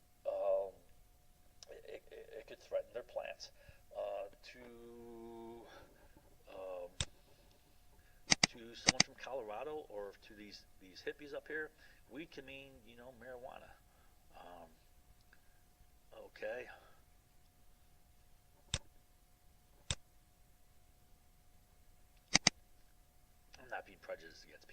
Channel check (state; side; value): identical; both; correlation 1.00